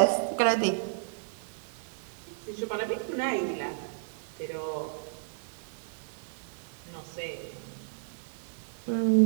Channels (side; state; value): left; silent; 56 dB below the other